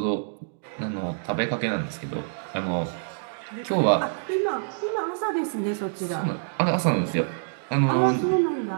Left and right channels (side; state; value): left; silent; digital silence